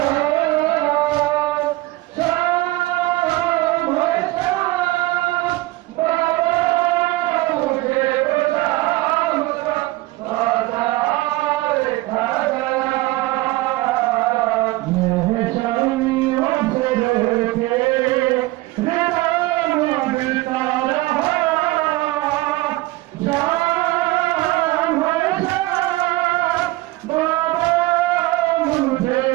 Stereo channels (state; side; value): quieter; left; 19.6 dB